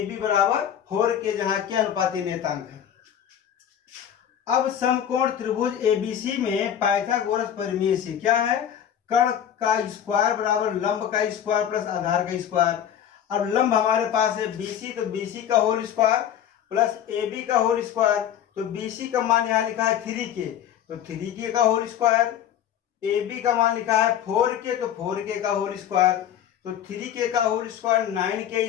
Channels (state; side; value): quieter; right; 9.8 dB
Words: बराबर 4 के, जहां के अनुपाती नेतांक है। अब समकोण त्रिभुज ABC में पाइथागोरस परिमेय से क्या है, कर्ण का स्क्वायर बराबर लंब का स्क्वायर प्लस आधार का स्क्वायर। अब लंब हमारे पास है BC, तो BC का होल स्क्वायर प्लस AB का होल स्क्वायर। तो BC का मान यहाँ लिखा है 3K, तो 3K का होल स्क्वायर। AB का मान लिखा है 4K, तो 4K का होल स्क्वायर। तो 3K का whole square